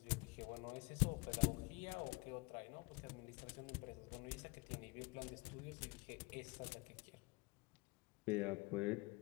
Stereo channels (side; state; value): right; quieter; 26.2 dB